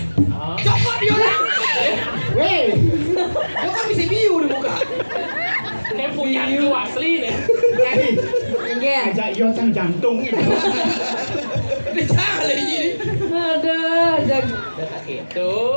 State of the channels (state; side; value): inverted; both; correlation -1.00